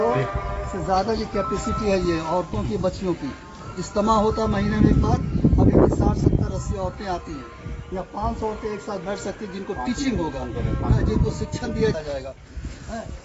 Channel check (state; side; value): identical; both; correlation 1.00